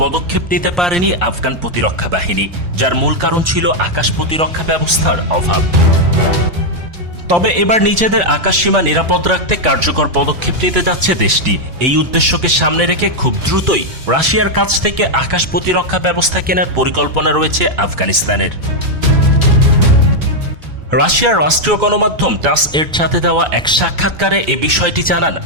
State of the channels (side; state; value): left; late; 4.1 ms